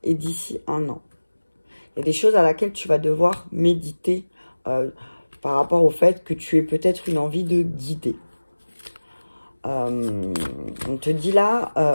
et d'ici un an. Il y a des choses à laquelle tu vas devoir méditer par rapport au fait que tu aies peut-être une envie de guider. On te dit là,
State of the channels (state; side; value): inverted; both; correlation -1.00